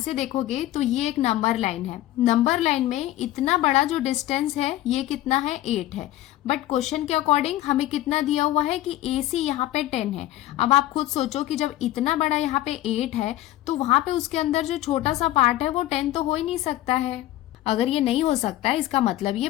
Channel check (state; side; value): quieter; right; 14.7 dB